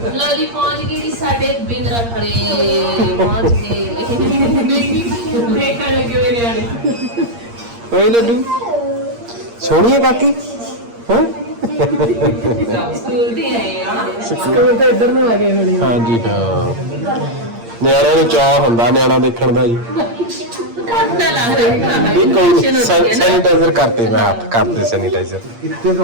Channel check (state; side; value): late; left; 8.6 ms